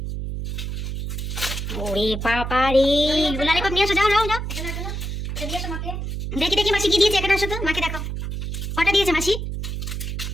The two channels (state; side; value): noise; right; hum, 4 dB below the sound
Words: ওরে বাবা রে, ললিপপ নিয়ে আসো, যাও যাও যাও, এটা দিয়ে এসো মাকে। দেখি দেখি মাসি কি দিয়েছে, এখানে আসো তো, মাকে দেখো কটা দিয়েছে মাসি।